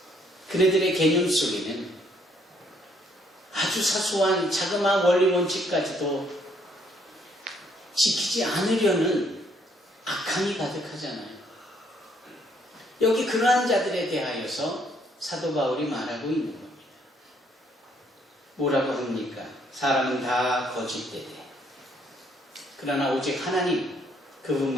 그네들의 개념 속에는 아주 사소한 자그마한 원리 원칙까지도 지키지 않으려는 악함이 가득하잖아요. 여기 그러한 자들에 대하여서 사도 바울이 말하고 있는 겁니다. 뭐라고 합니까? 사람은 다 거짓되되 그러나 오직 하나님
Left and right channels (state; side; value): normal; both; correlation 0.68